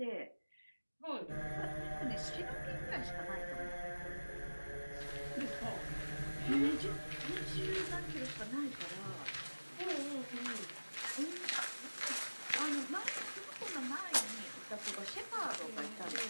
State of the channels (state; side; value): inverted; both; correlation -1.00